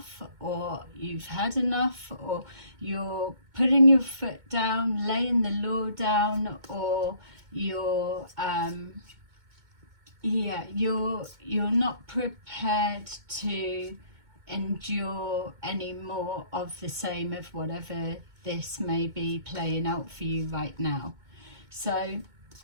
or you've had enough, or you're putting your foot down, laying the law down, or you're you're not prepared to endure any more of the same of whatever this may be playing out for you right now. So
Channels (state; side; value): late; left; 2.2 ms